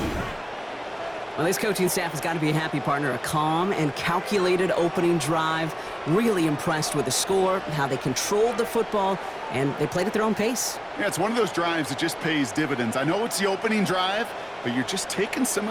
Well, this coaching staff has got to be a happy partner. A calm and calculated opening drive. Really impressed with the score, how they controlled the football, and they played at their own pace. Yeah, it's one of those drives that just pays dividends. I know it's the opening drive, but you're just taking some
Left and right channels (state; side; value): identical; both; correlation 1.00